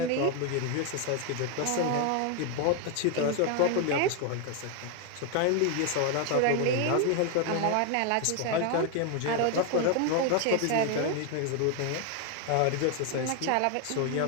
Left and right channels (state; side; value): different; both; correlation 0.01